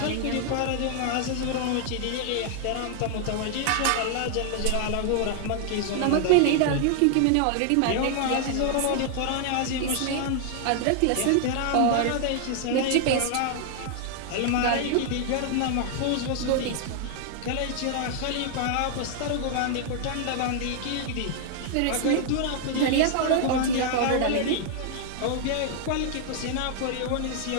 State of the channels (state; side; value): different; both; correlation 0.00